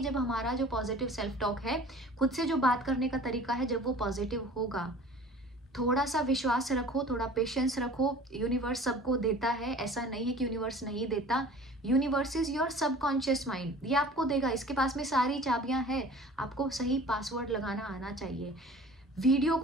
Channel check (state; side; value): normal; both; correlation 0.45